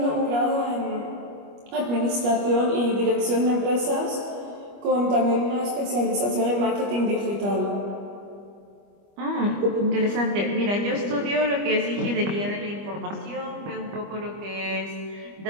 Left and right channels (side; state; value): left; late; 25 ms